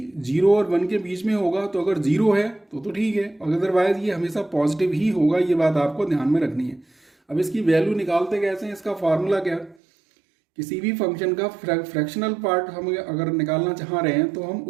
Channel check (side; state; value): left; drops out; at 9.8 s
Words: 0 और 1 के बीच में होगा, तो अगर 0 है तो ठीक है, अदरवाइज ये हमेशा पॉजिटिव ही होगा। ये बात आपको ध्यान में रखनी है। अब इसकी वैल्यू निकालते कैसे हैं, इसका फार्मूला क्या? किसी भी फंक्शन का फ्रैक्शनल पार्ट हम अगर निकालना चाह रहे हैं तो हम